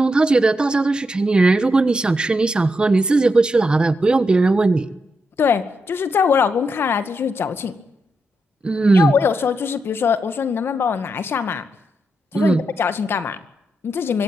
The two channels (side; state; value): both; normal; correlation 0.84